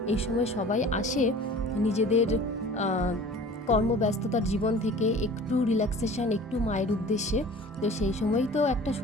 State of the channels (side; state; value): both; normal; correlation 0.44